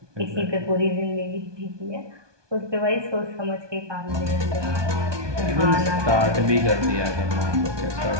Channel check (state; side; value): late; left; 1.2 ms